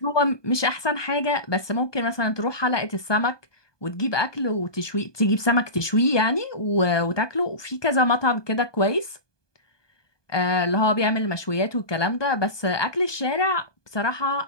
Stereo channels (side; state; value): right; late; 1.2 ms